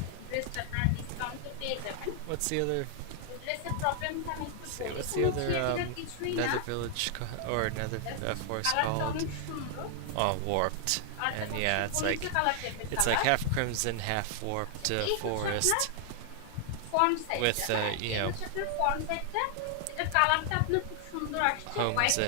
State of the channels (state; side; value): different; both; correlation 0.00